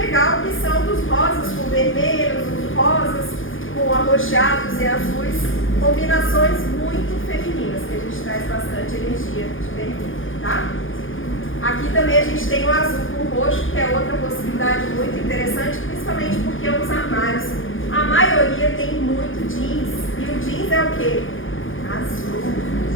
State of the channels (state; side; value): late; right; 0.58 ms